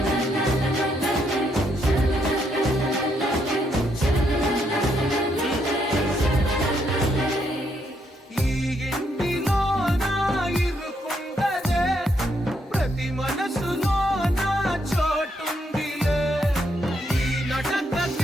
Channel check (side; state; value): both; normal; correlation 0.76